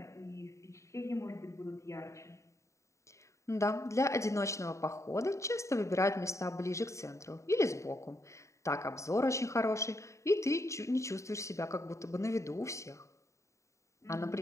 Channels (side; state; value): right; late; 0.14 ms